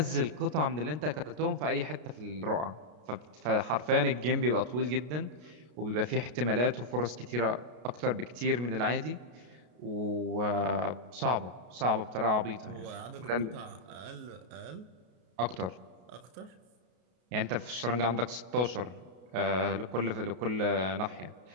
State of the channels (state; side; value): late; left; 33 ms